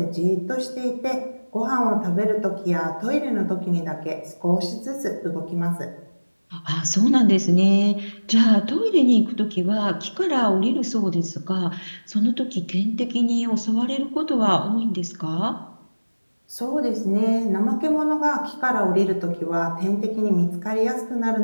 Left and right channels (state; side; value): inverted; both; correlation -1.00